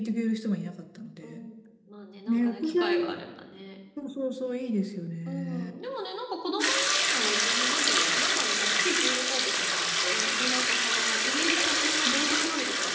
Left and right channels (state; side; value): identical; both; correlation 1.00